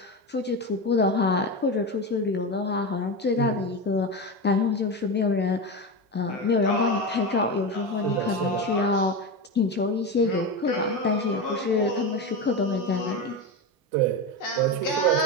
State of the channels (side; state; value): both; normal; correlation 0.19